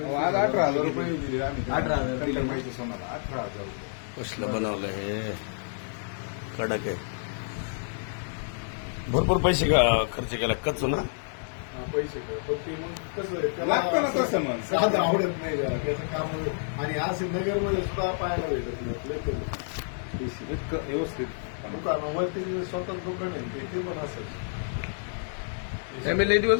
रुपये दिले आम्ही. 18,000 दिले. माहिती सोनाला 18,000 रुपये. कसलं बनवलं हे कडक आहे. भरपूर पैसे खर्च केला कच्चू ना. पैसे लागतं ना तसं मग. साधं आवडत नाही जरा त्याचं काम. आणि आज नगरमध्ये सुद्धा पाहायला भेटत नाही. इतकं व्यवस्थित दुकानावरती स्वतंत्र दुकान आहे ते पण असेल. मी लई दिवस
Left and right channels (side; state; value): right; silent; digital silence